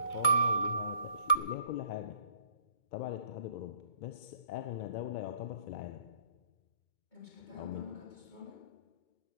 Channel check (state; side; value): late; right; 2.2 ms